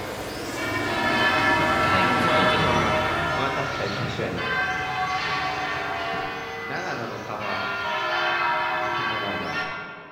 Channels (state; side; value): identical; both; correlation 1.00